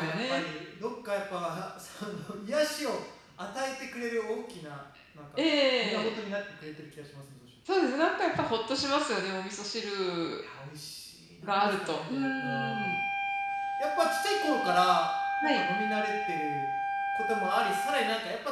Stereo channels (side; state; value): both; identical; correlation 1.00